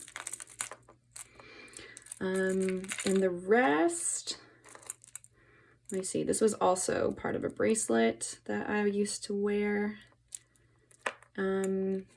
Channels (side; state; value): both; identical; correlation 1.00